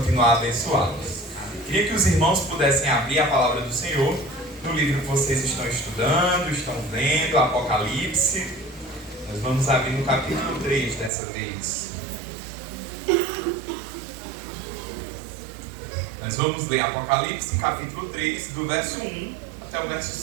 a abençoá-los. Queria que os irmãos pudessem abrir a palavra do Senhor no livro que vocês estão estudando, estão lendo, Apocalipse. Nós vamos abrir no capítulo 3 dessa vez. Nós vamos ler Apocalipse, capítulo 3, do verso 1 até o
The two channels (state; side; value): drops out; left; at 11.1 s